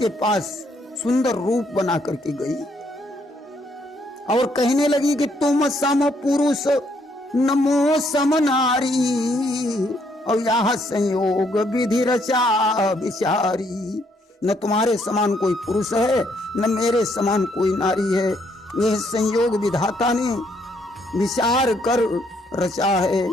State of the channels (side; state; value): both; normal; correlation 0.71